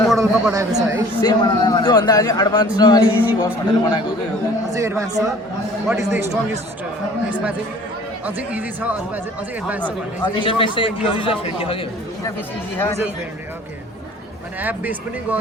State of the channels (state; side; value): normal; both; correlation 0.50